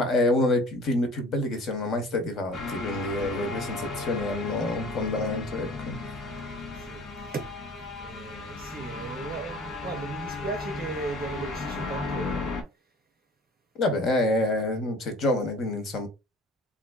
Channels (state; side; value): normal; both; correlation 0.46